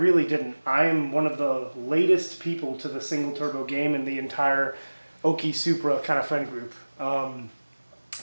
didn't. I am one of the latest people to the single turbo game in the entire Okie Supra kind of friend group.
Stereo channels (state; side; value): inverted; both; correlation -1.00